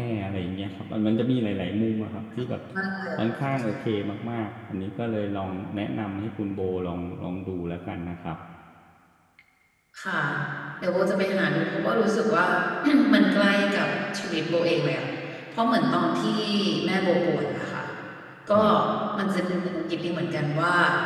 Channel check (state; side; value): identical; both; correlation 1.00